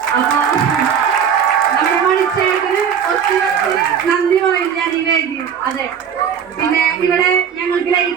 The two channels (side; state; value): left; quieter; 7.8 dB